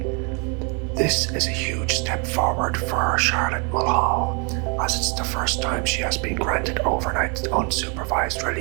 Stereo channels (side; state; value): left; quieter; 35.0 dB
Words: "This is a huge step forward for Charlotte Mulhall, as it's the first time she has been granted overnight unsupervised